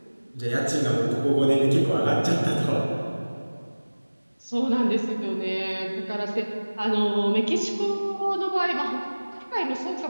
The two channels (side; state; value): both; inverted; correlation -1.00